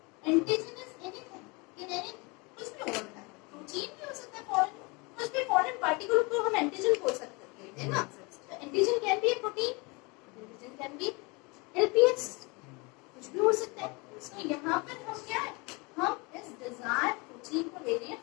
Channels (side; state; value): right; quieter; 27.9 dB